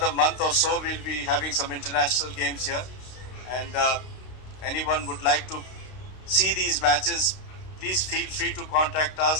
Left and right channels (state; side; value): late; right; 32 ms